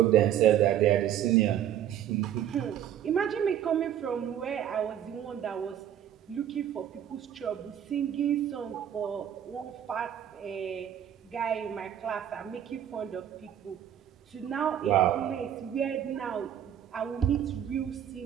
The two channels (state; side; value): quieter; left; 10.3 dB